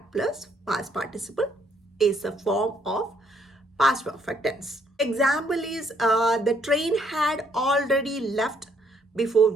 plus past participle is a form of past perfect tense. Example is the train had already left before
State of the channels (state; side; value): normal; both; correlation 0.69